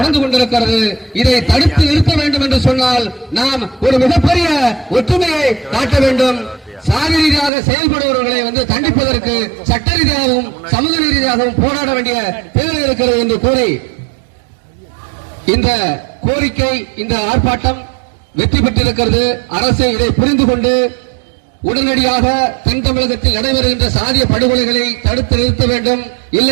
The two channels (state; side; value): drops out; left; at 7.5 s